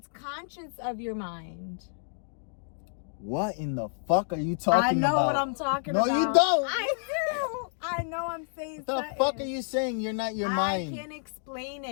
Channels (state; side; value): silent; right; digital silence